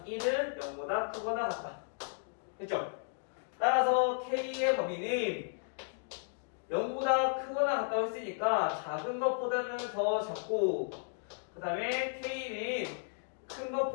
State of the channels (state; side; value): silent; right; digital silence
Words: 1은 0보다 크거나 같다. 됐죠? 따라서 k의 범위는 0보다 크거나 같다고 했으니까 작은 것보다는 더 작고, 그 다음에 k는 큰